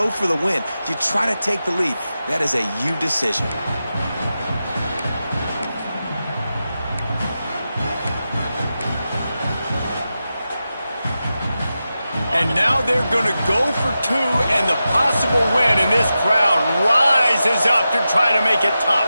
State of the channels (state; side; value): inverted; both; correlation -0.91